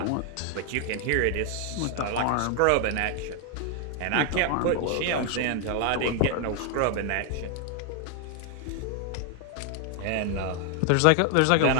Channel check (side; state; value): both; different; correlation 0.00